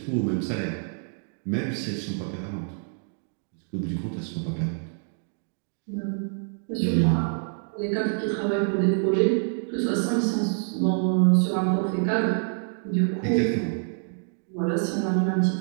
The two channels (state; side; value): silent; left; 56 dB below the other